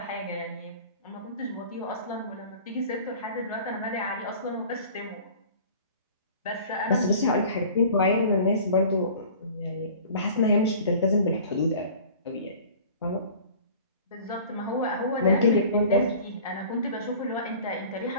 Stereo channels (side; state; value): both; inverted; correlation -0.44